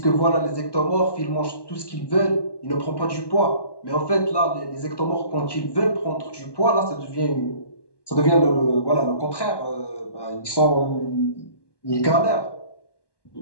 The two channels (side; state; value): right; late; 1.1 ms